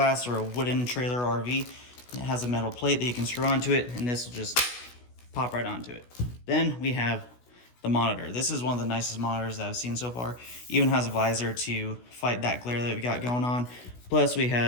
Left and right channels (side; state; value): right; late; 16 ms